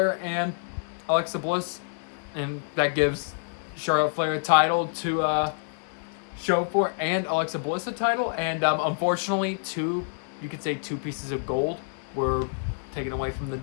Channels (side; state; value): right; silent; digital silence